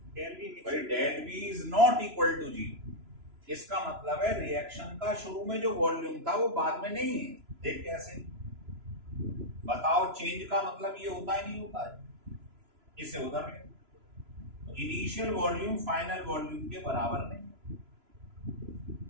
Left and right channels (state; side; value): late; left; 3.0 ms